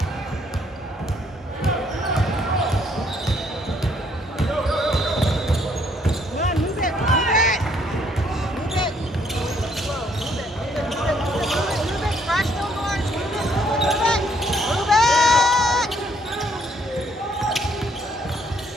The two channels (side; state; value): both; normal; correlation 0.67